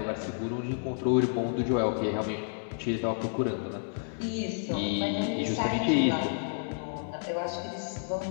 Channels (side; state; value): right; silent; 58 dB below the other